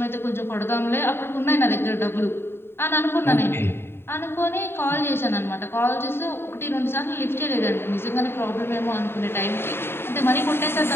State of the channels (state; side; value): late; right; 0.11 ms